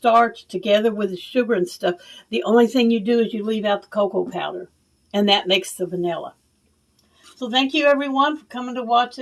together with the sugar and stuff. The only thing you do is you leave out the cocoa powder. And that makes the vanilla. So thank you everyone for coming to watch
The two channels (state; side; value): identical; both; correlation 1.00